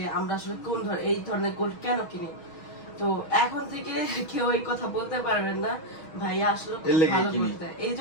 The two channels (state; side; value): late; right; 6.3 ms